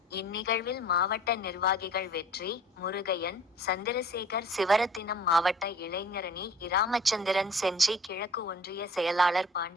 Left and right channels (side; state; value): both; normal; correlation 0.48